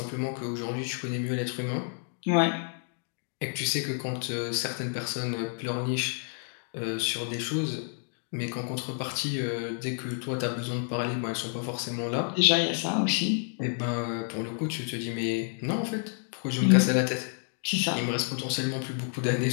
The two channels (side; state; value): right; silent; 58 dB below the other